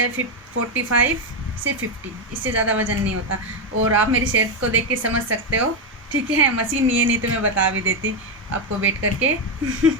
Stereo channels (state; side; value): normal; both; correlation 0.06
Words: 45 से 50, इससे ज़्यादा वज़न नहीं होता। और आप मेरी सेहत को देख के समझ सकते हो। ठीक है, मशीन नहीं है, नहीं तो मैं बता भी देती आपको वेट करके।